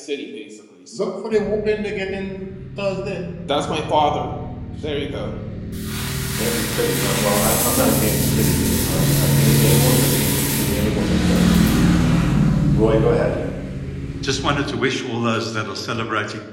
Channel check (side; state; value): both; identical; correlation 1.00